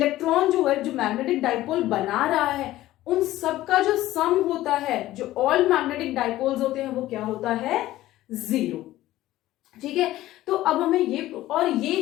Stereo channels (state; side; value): quieter; right; 15.5 dB